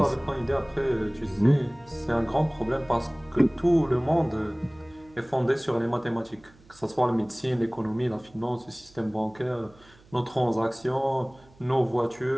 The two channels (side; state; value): right; noise; hum, 27 dB below the sound